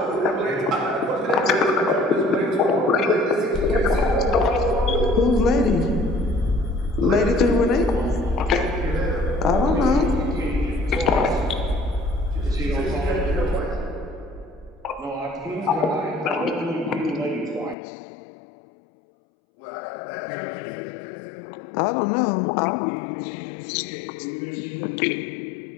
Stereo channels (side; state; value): right; drops out; at 17.8 s